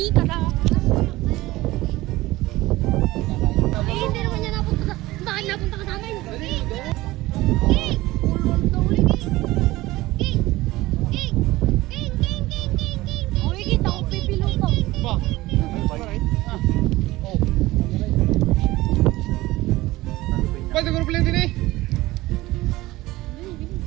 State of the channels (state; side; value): quieter; left; 18.5 dB